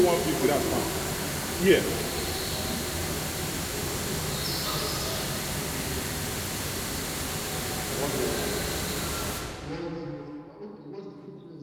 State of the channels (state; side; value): identical; both; correlation 1.00